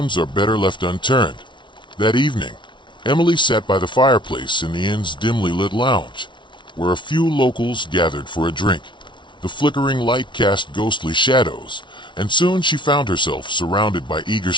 are better left unturned." That evening, Emily sat by the fireplace in the inn's dimly lit lounge, where a few locals gathered for a drink. The flickering light cast ghostly shadows, and soon she found herself surrounded by eager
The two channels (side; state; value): right; late; 0.24 ms